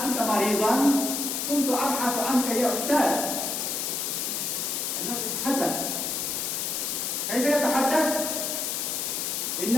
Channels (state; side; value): noise; left; hiss, 1 dB below the sound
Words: কুনতা মারিদান, কুনতু আবহাসু আনকা ইয়া উস্তাদ। إنه يتحدث. كيف يتحدث؟